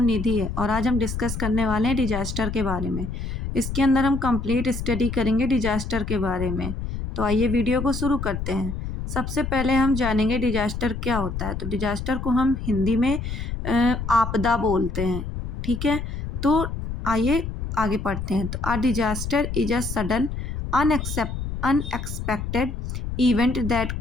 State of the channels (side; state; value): left; noise; rumble, 5 dB below the sound